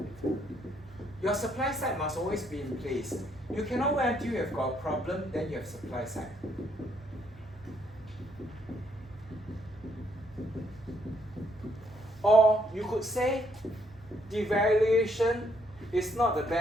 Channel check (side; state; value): both; normal; correlation 0.71